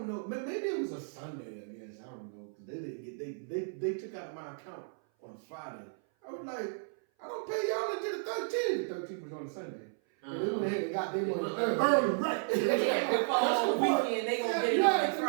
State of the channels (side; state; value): left; silent; 55 dB below the other